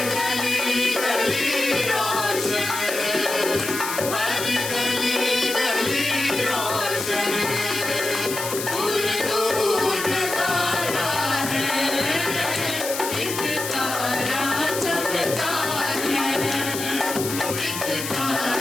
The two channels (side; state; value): left; noise; hiss, 6 dB below the sound